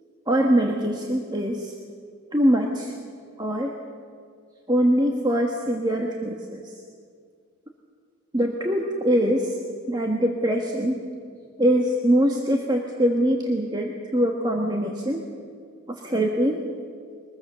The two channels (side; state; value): both; normal; correlation 0.71